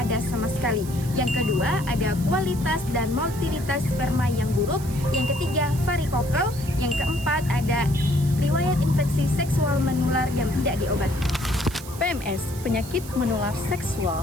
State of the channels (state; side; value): noise; right; hiss, 15 dB below the sound